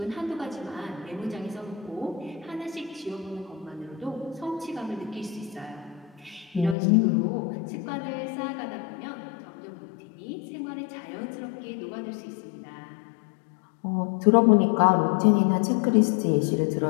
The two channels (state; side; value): drops out; right; at 6.8 s